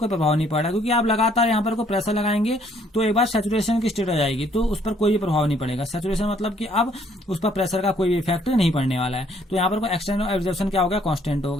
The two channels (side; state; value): both; normal; correlation 0.64